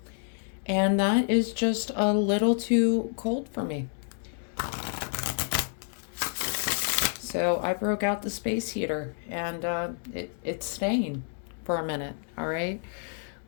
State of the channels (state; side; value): silent; right; 59 dB below the other